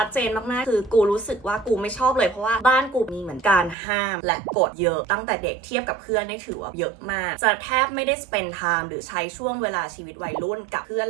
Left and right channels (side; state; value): left; drops out; at 3.8 s